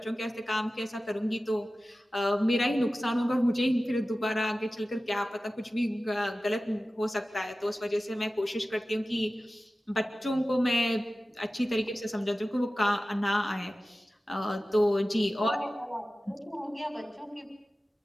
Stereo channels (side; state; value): both; normal; correlation 0.95